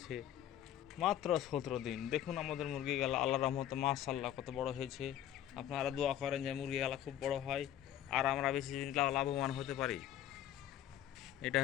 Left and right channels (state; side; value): quieter; right; 11.5 dB